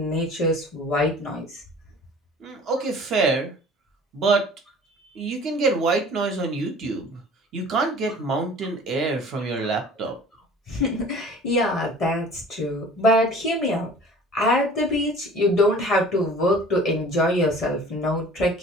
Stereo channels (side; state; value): both; normal; correlation 0.46